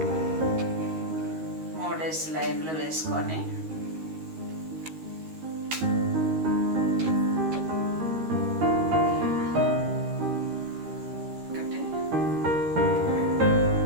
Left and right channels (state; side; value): late; left; 13 ms